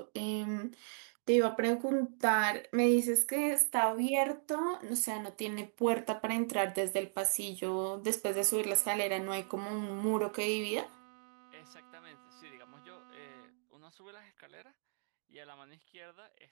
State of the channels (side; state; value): left; silent; digital silence